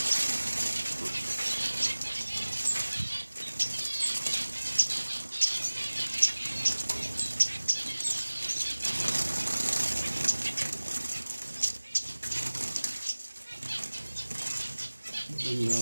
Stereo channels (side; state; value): both; inverted; correlation -1.00